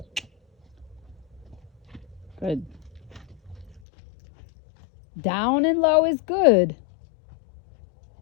Good. Down and low is good.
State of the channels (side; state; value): right; drops out; at 3.8 s